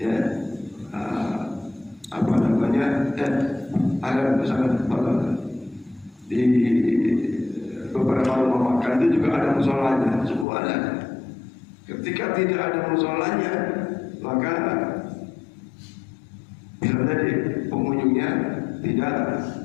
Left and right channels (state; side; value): drops out; right; at 10.5 s